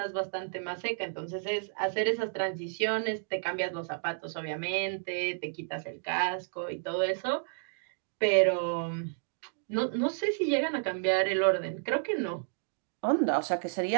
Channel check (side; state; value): left; silent; digital silence